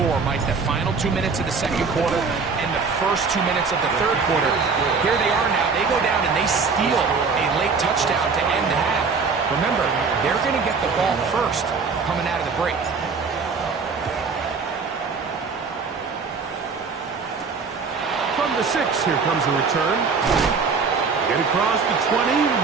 four, Mike, the final 2 minutes of the second quarter and the first 2 minutes of the third quarter. Here they are now. They go down and they steal a late touchdown to end the half. Remember, they're going to get the ball first coming out of the break. From the 6, here comes a return. Get across the 20,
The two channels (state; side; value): quieter; left; 5.0 dB